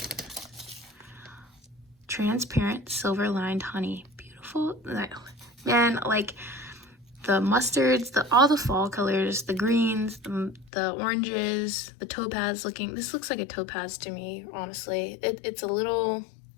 Transparent silver lined honey. Beautiful. Man, like the mustards, all the fall colors, the greens, the oranges, the topaz looking. This looks like a topaz to me, honestly. It's a little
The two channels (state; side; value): drops out; right; at 10.7 s